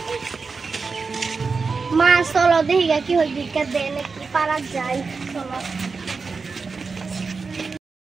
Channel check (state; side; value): quieter; left; 4.6 dB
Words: মা চলো দেখি কি হয় ভিক্ষা দেয় নাকি পারা যায় চলো